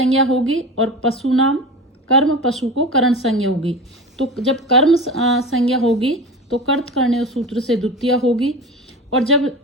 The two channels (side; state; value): both; normal; correlation 0.30